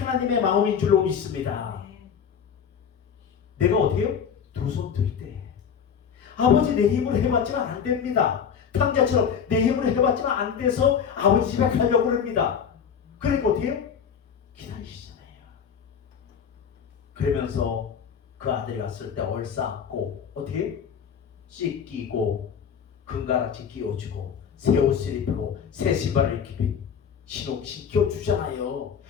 마음인 줄로 믿습니다. 내가 어떻게 해요? 두 손 들 때 아버지 내 힘으로 해봤지만 안 됩니다. 탕자처럼 내 힘으로 해봤지만 안 돼서 아버지 집에 가려고 합니다. 그러니까 어떻게 해요? 기다리시잖아요. 그러면서 그 아들이 왔을 때 얼싸안고 어떻게 해요? 씻기고 금가락지 끼워주고 새 옷을 입히고 새 신발을 신겨주잖아요.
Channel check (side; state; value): right; quieter; 7.4 dB